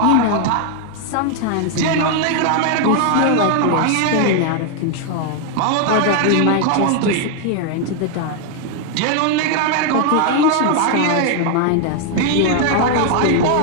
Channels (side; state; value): both; different; correlation 0.00